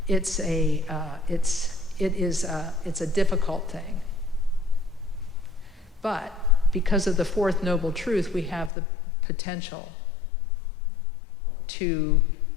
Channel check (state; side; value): drops out; right; at 8.7 s